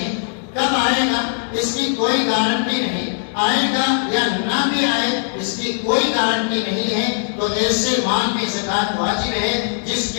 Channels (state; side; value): silent; right; digital silence